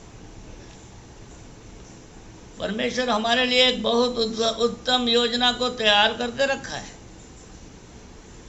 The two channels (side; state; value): both; identical; correlation 1.00